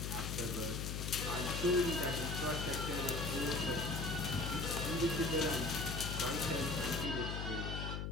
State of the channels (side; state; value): left; noise; hum, 3 dB below the sound